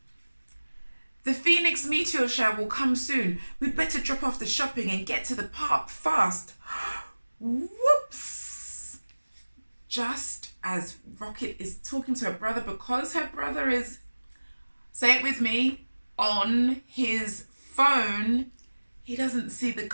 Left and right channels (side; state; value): both; inverted; correlation -1.00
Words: The Phoenix meteor shower will come soon. We'd better drop off the shopping and get to the park fast. Whoops! Just as Rocket is talking to her brother, because her brother is, say it with me, on his phone, he doesn't see the